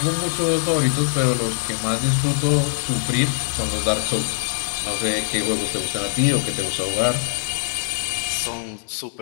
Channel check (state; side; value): silent; right; 56 dB below the other